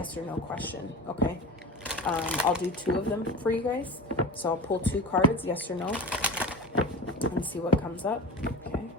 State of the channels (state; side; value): normal; both; correlation 0.32